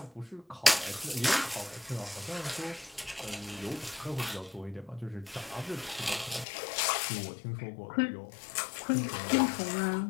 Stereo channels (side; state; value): right; drops out; at 6.5 s